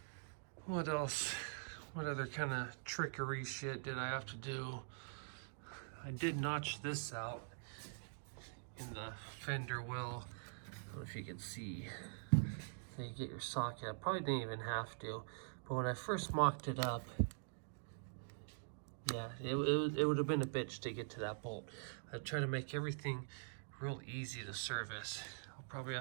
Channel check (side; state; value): left; silent; digital silence